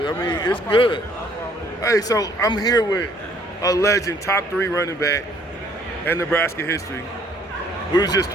I mean, it's good. Hey, so I'm here with a legend, top 3 running back in Nebraska history. We was just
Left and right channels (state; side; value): normal; both; correlation 0.62